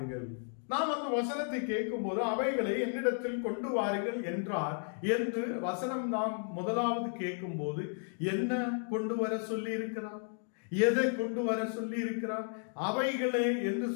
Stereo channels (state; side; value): silent; right; 55 dB below the other